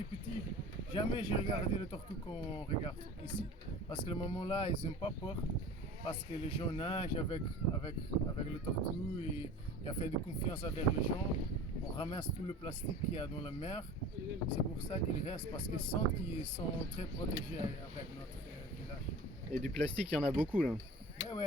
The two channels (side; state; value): both; normal; correlation 0.39